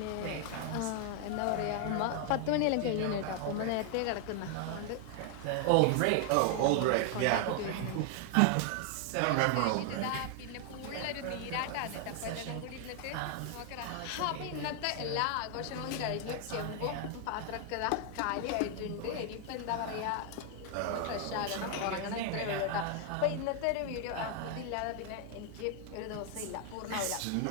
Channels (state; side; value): different; both; correlation 0.00